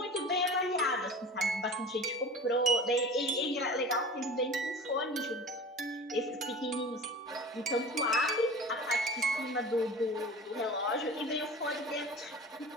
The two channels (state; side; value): normal; both; correlation 0.37